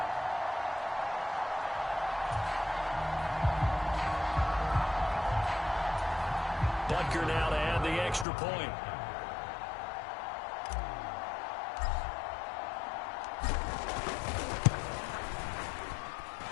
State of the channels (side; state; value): right; drops out; at 8.2 s